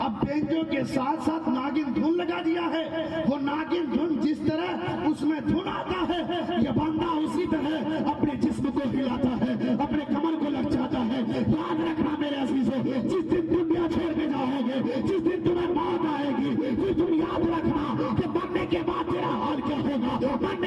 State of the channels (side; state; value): both; identical; correlation 1.00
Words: اب بینجو کے ساتھ ساتھ ناگن دھن لگا دیا ہے۔ وہ ناگن دھن جس طرح اس میں دھن آتا ہے، یہ بندہ اسی طرح اپنے جسم کو ہلاتا ہے، اپنے کمر کو لچاتا ہے۔ یاد رکھنا میرے عزیزوں، جس دن دنیا چھوڑ کے جاؤ گے، جس دن تمہیں موت آئے گی، پھر تم یاد رکھنا کہ مرنے کے بعد تیرا حال کیا ہوگا،